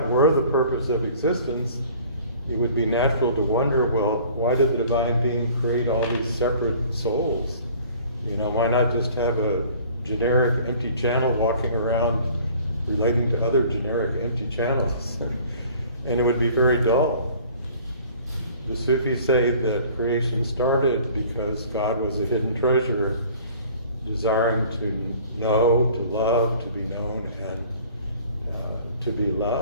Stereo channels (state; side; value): inverted; both; correlation -0.50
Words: were the purpose of existence, it would be natural to wonder, well, why did the divine being create all these separate souls? You know, why not just have a generic empty channel walking around relating to other generic empty channels? And it would be very dull. The Sufis say that creation started because God was a hidden treasure, desiring to know, to love, to be known, and to be